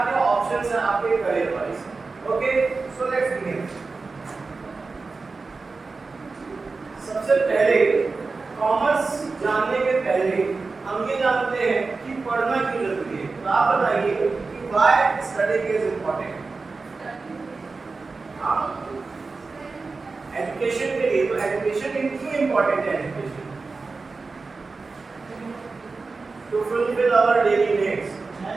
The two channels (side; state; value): left; quieter; 4.0 dB